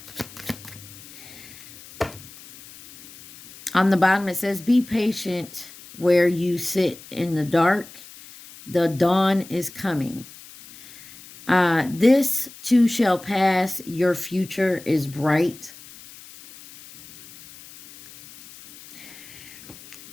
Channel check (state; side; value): noise; left; hiss, 19 dB below the sound